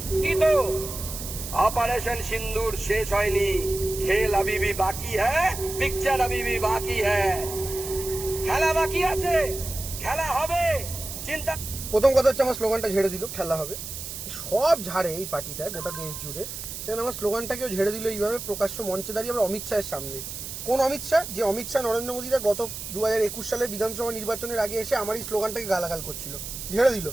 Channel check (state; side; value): noise; right; hiss, 8 dB below the sound